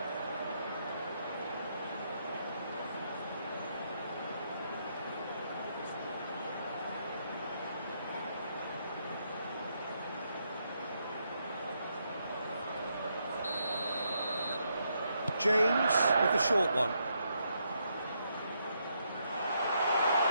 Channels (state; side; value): inverted; both; correlation -0.78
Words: James with the short one.